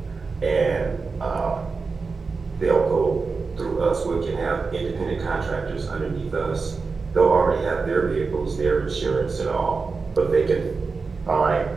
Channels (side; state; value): left; quieter; 4.5 dB